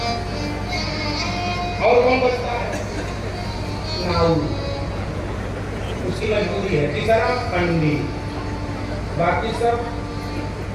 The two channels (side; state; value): both; identical; correlation 1.00